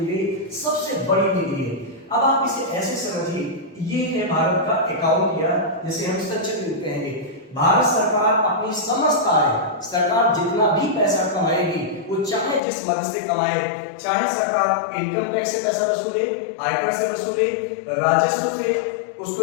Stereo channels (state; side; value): drops out; right; at 12.6 s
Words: गई सबसे बड़ी निधि है। अब आप इसे ऐसे समझिए, ये है भारत का अकाउंट या जिसे हम संचित निधि कहेंगे। भारत सरकार अपनी समस्त आय, सरकार जितना भी पैसा कमाएगी वो चाहे जिस मद से कमाए, चाहे सरकार इनकम टैक्स से पैसा वसूले, आयकर से वसूले, राजस्व से,